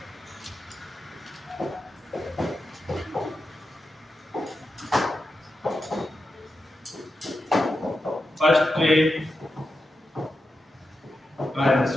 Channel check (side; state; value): both; normal; correlation 0.89